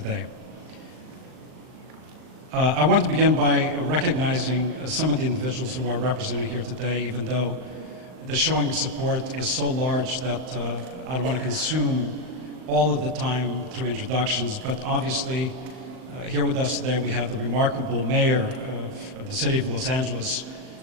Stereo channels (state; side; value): late; left; 39 ms